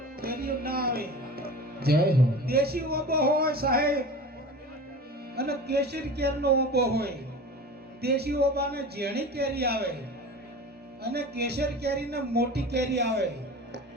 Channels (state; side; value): normal; both; correlation 0.35